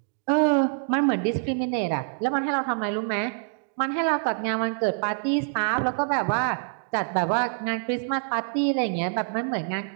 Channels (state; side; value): silent; left; digital silence